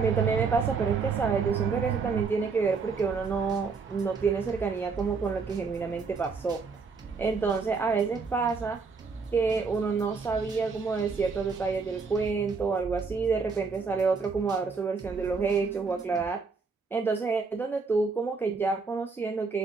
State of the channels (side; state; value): left; quieter; 4.8 dB